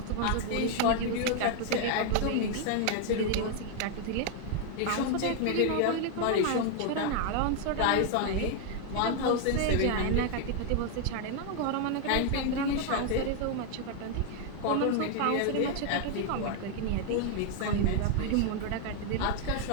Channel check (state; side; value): different; both; correlation 0.00